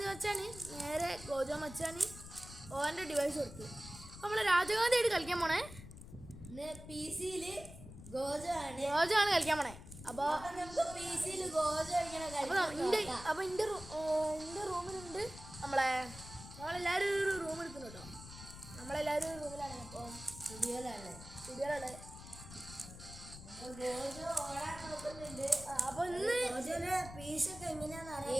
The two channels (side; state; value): left; noise; rumble, 14 dB below the sound